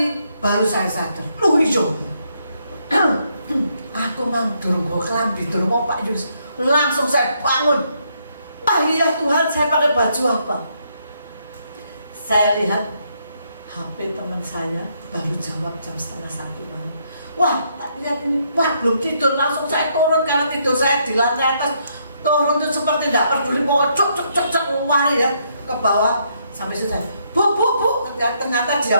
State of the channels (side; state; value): both; inverted; correlation -0.74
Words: baru saya sadar. Loh hijau. Aku nang durung kelambi durung mau Pak Yulis. Langsung saya bangun. Iya Tuhan, saya pakai baju apa? Saya lihat HP teman saya baru jawab jam 12:30 malam. Wah, tak lihat ini, wah belum tidur, langsung saya turun karena tidur saya di lantai atas. Turun itu seperti tidak peduli, mau cuk lari ya ke bawah sampai selesai. Bu, ternyata